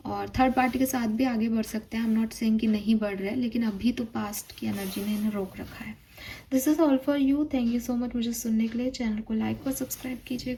और थर्ड पार्टी के साथ भी आगे बढ़ सकते हैं, आई एम नॉट सेइंग कि नहीं बढ़ रहे, लेकिन अभी तो पास्ट की एनर्जी ने इन्हें रोक रखा है। This is all for you, thank you so much मुझे सुनने के लिए। चैनल को लाइक और सब्सक्राइब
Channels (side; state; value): both; identical; correlation 1.00